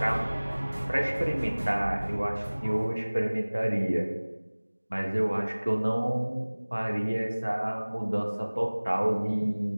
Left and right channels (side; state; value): both; inverted; correlation -1.00